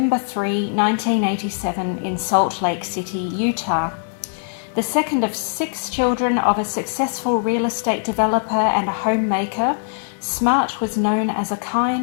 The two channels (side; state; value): right; silent; 59 dB below the other